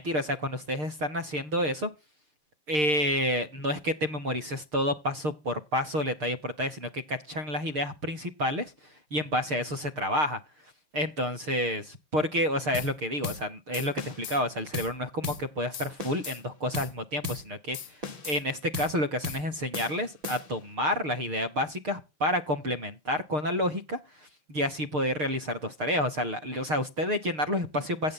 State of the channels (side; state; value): left; late; 6.6 ms